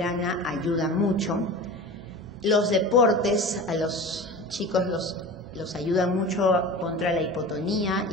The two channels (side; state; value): both; normal; correlation 0.34